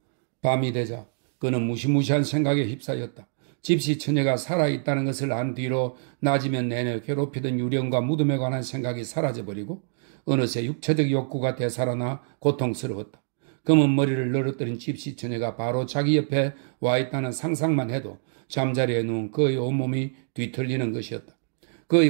밤이 되자 그는 무시무시한 생각에 휩싸였다. 집시 처녀가 살아있다는 것을 안 뒤로 낮이면 내내 괴롭히던 유령과 무덤에 관한 생각이 사라져버리고 어느새 육체적 욕구가 되살아나 고통스러웠다. 검은 머리를 늘어뜨린 집시 처녀가 바로 자기 옆에 와 있다는 상상만 해도 잠자리에 누운 그의 온몸이 뒤틀리는 것이었다.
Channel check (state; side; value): silent; left; digital silence